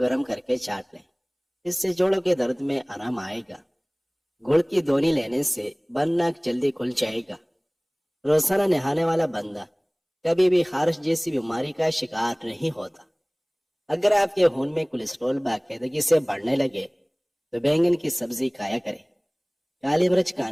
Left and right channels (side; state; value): both; identical; correlation 1.00